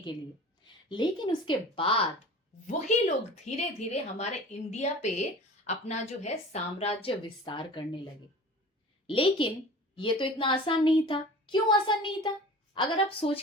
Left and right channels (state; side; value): normal; both; correlation 0.40